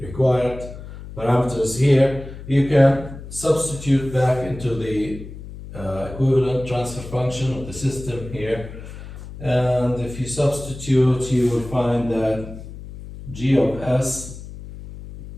required parameters here, you can substitute back into the equivalent transfer function of the system here, and if you substitute, you will find that g of s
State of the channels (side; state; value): left; noise; hum, 13 dB below the sound